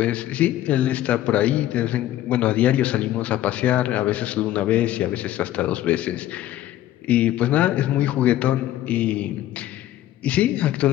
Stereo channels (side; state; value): right; quieter; 13.5 dB